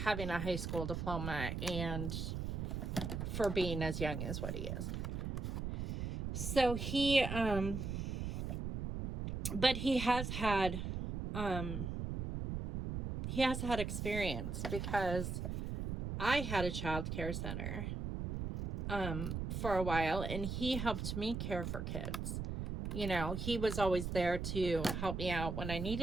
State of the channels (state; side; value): noise; right; rumble, 3 dB below the sound